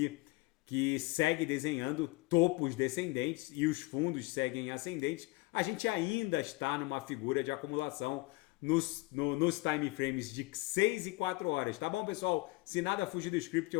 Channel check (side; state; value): right; quieter; 22.0 dB